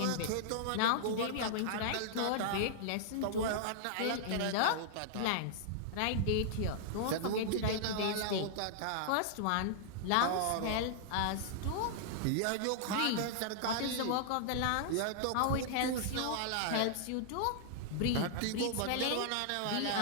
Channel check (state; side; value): different; both; correlation -0.01